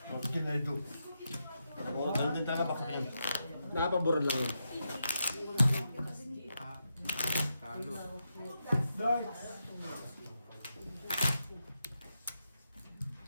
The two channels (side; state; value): both; inverted; correlation -0.85